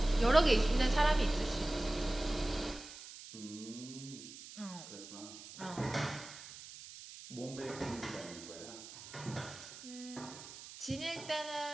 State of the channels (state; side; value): noise; right; hiss, 14 dB below the sound